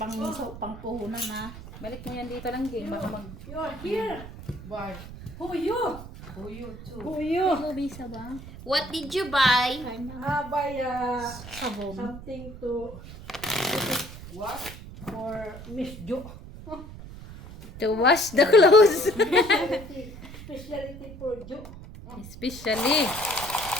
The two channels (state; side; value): noise; right; rumble, 14 dB below the sound